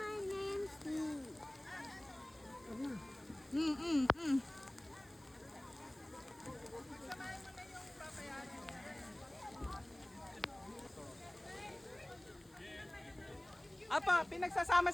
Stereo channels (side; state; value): left; noise; hiss, 28 dB below the sound